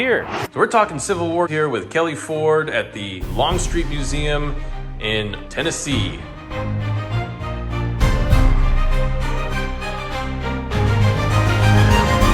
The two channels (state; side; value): identical; both; correlation 1.00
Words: So we're talking Civil War here with Kelly Ford at the Longstreet Museum in Tennessee.